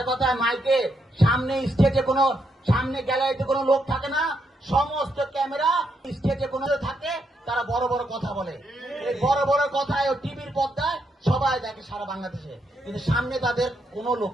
কথায় মাইকে সামনে স্টেজে কোনো সামনে গ্যালারিতে কোনো লোক থাকে না, সমস্ত ক্যামেরা স্টেজে কোনো থাকে, তারা বড় বড় কথা বলে। এই বড় বড় কথায় টিভির পর্দায় সবাই দেখে সারা বাংলাদেশে, কিন্তু সামনে তাদের কোনো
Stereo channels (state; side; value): normal; both; correlation 0.79